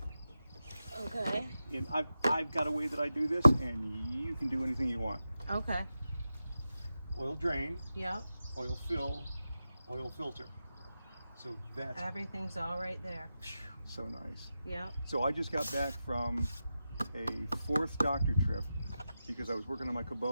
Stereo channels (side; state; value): both; inverted; correlation -0.91